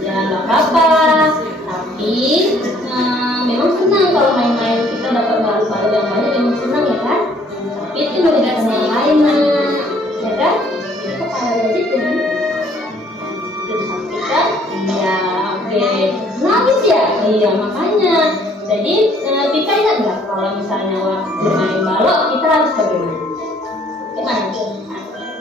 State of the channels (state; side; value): normal; both; correlation 0.61